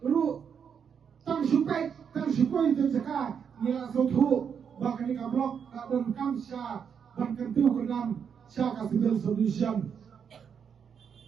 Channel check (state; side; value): quieter; left; 7.2 dB